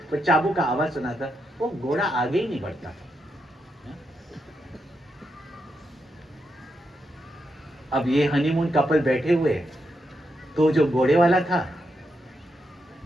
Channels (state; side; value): normal; both; correlation 0.83